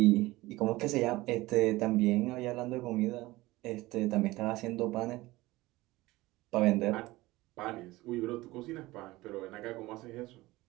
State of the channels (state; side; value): quieter; left; 19.4 dB